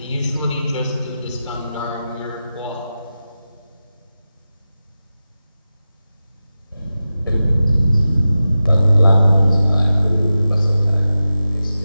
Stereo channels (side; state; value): both; inverted; correlation -0.93